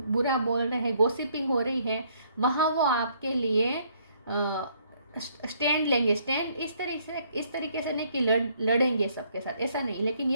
बोल रहे हैं, गॉसिपिंग हो रही है, वहाँ वो आपके लिए स्टैंड लेंगे। स्टैंड इस तरीके से नहीं कि लड़ेंगे सबके साथ, ऐसा नहीं, लेकिन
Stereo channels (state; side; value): inverted; both; correlation -0.66